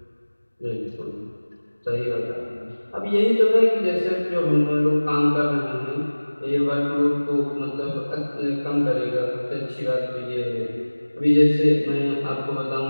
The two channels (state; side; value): inverted; both; correlation -1.00